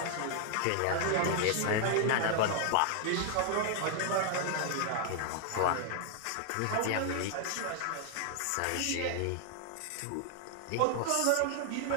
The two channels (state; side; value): different; both; correlation 0.00